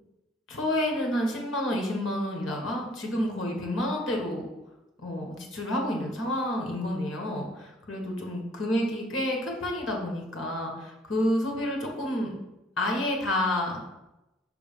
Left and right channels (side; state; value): both; normal; correlation 0.58